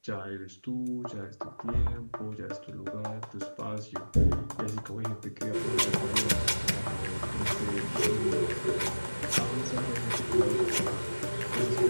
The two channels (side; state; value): both; inverted; correlation -1.00